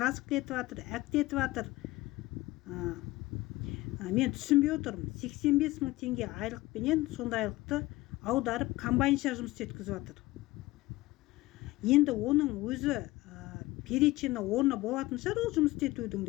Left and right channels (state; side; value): quieter; right; 19.0 dB